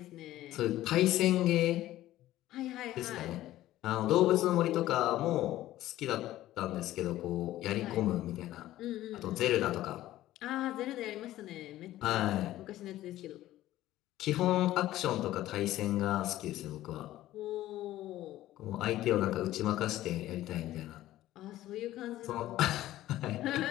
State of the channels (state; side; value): quieter; right; 14.7 dB